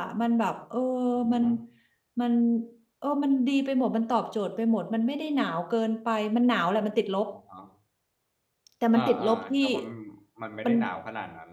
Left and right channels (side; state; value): both; identical; correlation 1.00